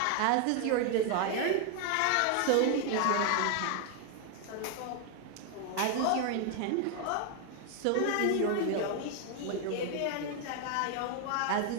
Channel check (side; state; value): both; different; correlation 0.01